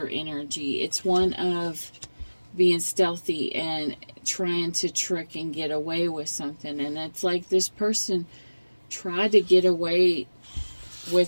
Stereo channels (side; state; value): both; inverted; correlation -1.00